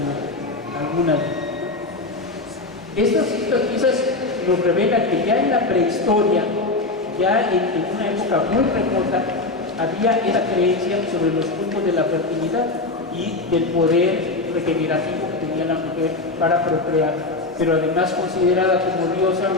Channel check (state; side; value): quieter; right; 3.2 dB